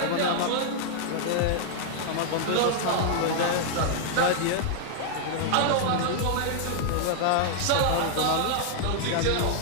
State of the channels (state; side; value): different; both; correlation -0.01